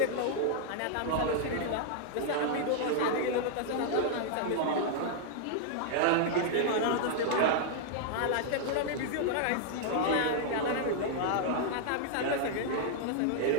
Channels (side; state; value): both; different; correlation -0.01